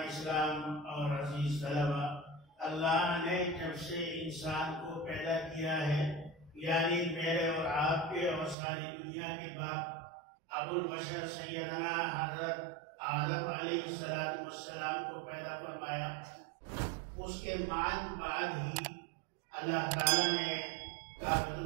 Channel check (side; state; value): left; drops out; at 8.6 s